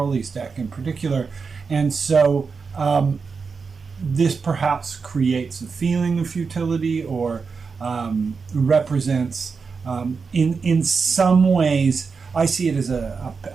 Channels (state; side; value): quieter; left; 5.1 dB